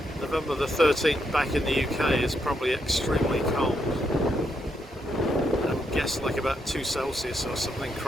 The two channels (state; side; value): normal; both; correlation 0.80